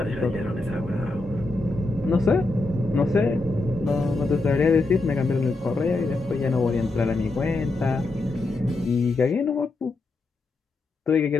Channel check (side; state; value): right; quieter; 3.2 dB